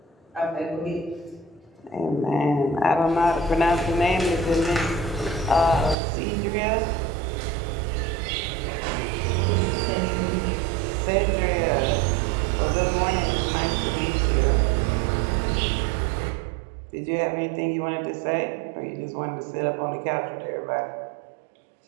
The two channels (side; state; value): left; drops out; at 6.0 s